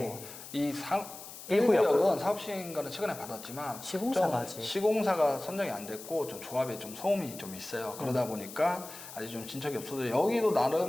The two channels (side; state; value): left; noise; hiss, 14 dB below the sound